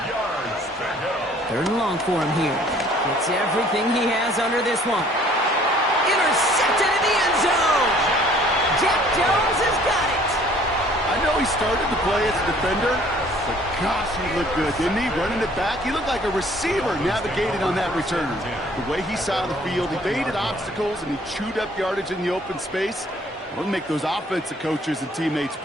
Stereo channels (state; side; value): normal; both; correlation 0.56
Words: Third and long for him here. Gets everything he has under this one. Intercepted in the end zone. Jack Jones has got it. I know he started the play as a defender, but gosh, he looked good, didn't he? Running it back, he looked like a receiver navigating on that return. The way he saw the field, he evaded obstacles, and he chewed up yardage in the open space. It'll make those offensive coaches and teammates